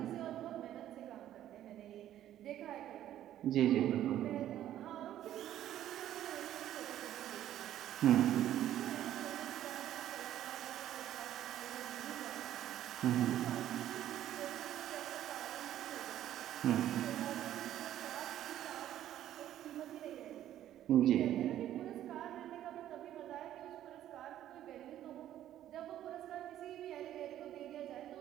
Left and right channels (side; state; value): left; quieter; 12.1 dB